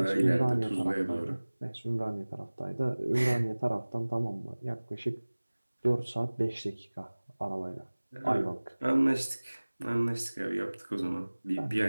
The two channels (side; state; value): both; inverted; correlation -1.00